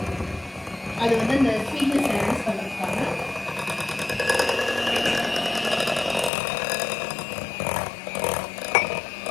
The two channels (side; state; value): right; drops out; at 6.3 s